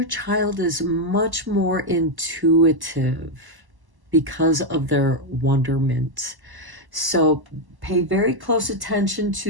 child is much more intuitive because of their wonderment. So pay very close attention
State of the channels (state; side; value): late; left; 1.1 ms